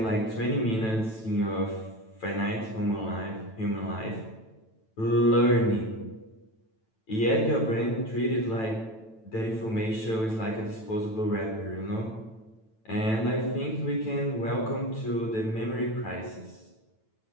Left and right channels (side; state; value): right; late; 9.0 ms